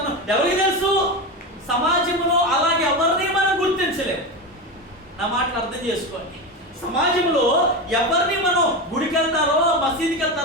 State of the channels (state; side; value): normal; both; correlation 0.19